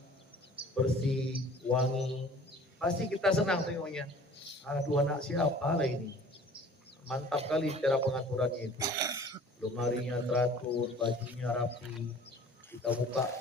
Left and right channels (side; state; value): both; normal; correlation 0.48